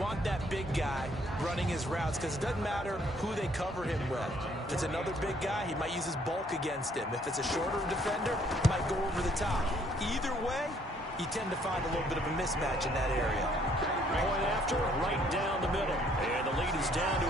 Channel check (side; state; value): both; normal; correlation 0.64